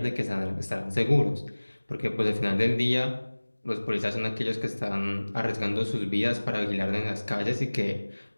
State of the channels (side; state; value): both; inverted; correlation -1.00